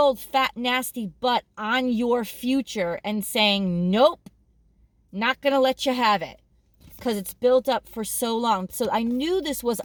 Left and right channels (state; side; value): identical; both; correlation 1.00